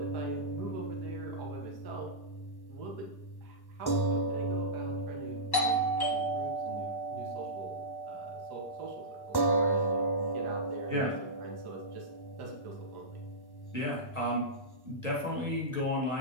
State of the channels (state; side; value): late; right; 1.1 ms